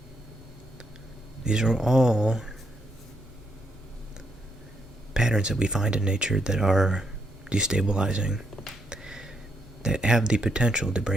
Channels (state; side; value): normal; both; correlation 0.77